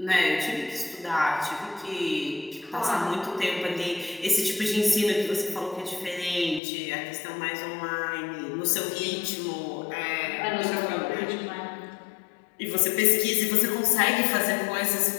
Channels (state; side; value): drops out; right; at 6.6 s